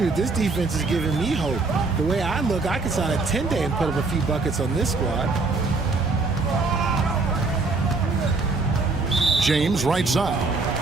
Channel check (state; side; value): quieter; left; 3.7 dB